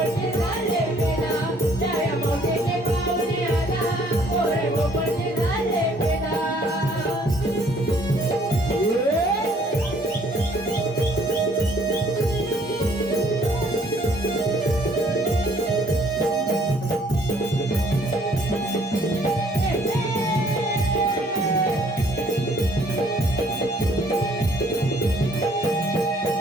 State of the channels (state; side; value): normal; both; correlation 0.61